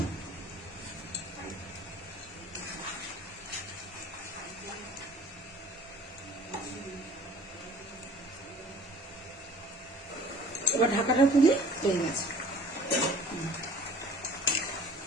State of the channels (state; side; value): normal; both; correlation 0.48